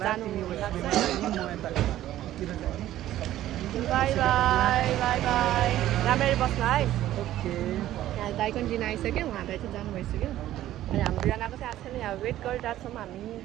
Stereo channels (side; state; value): left; quieter; 13.5 dB